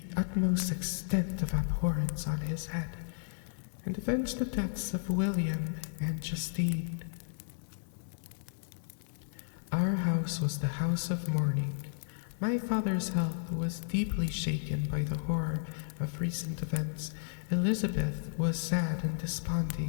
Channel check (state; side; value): silent; right; digital silence